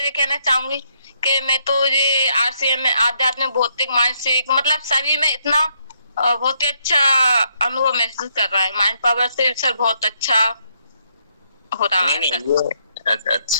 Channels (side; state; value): both; inverted; correlation -0.74